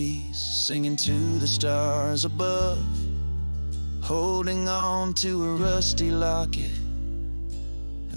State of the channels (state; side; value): inverted; both; correlation -1.00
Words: singing to the stars above, holding on to a rusty locket